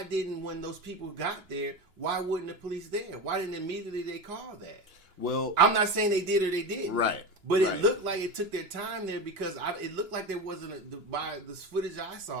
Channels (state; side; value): late; left; 3.0 ms